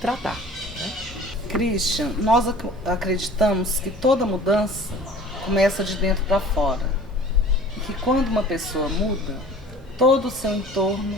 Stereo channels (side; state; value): both; normal; correlation 0.45